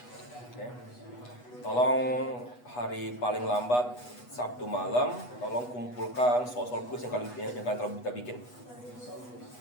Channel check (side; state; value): right; late; 8.2 ms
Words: Tolong hari paling lambat Sabtu malam, tolong kumpulkan soal-soal kuis yang kalian telah kita bikin.